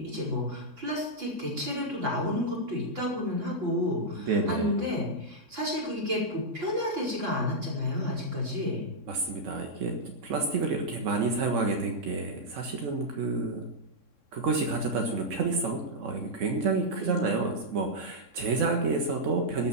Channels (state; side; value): late; left; 3.6 ms